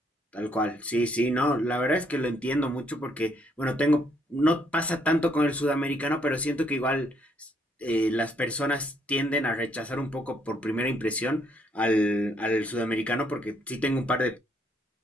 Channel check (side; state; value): both; normal; correlation 0.70